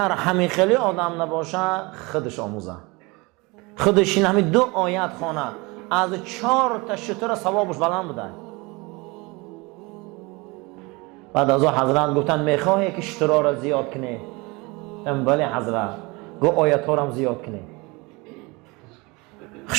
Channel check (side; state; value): left; quieter; 25.7 dB